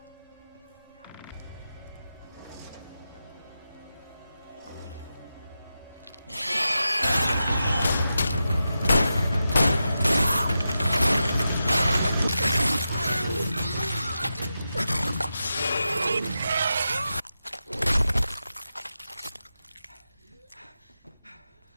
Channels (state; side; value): inverted; both; correlation -0.90